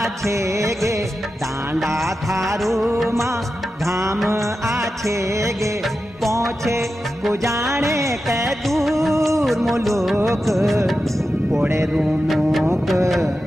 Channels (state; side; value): normal; both; correlation 0.91